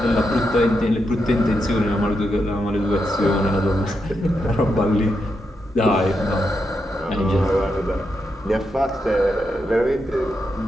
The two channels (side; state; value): both; normal; correlation 0.84